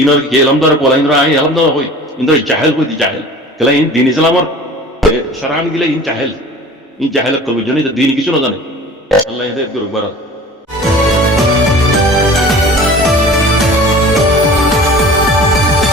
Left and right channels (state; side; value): normal; both; correlation 0.42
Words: ইনর কি এলামদার কোলা ইনর আই এলামদার হই ইনর জাহেল কই দি জাহেল কলা ইন দিন ইসলামর শরআন গিলা ইন জাহেল কল বুঝছো না দিন কিছু না জানে আল্লাহ হেদায়েত করুক বারা